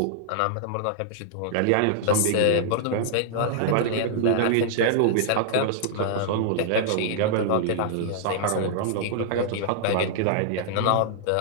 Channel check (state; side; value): different; both; correlation -0.01